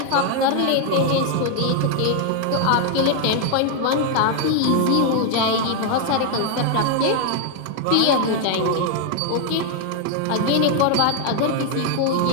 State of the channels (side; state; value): both; different; correlation 0.00